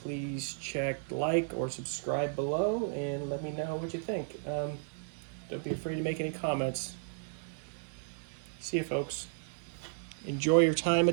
please check like or subscribe below and let me know what you think. Don't be afraid to make any comments. See you, folks. Enjoy your time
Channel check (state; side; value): silent; left; 55 dB below the other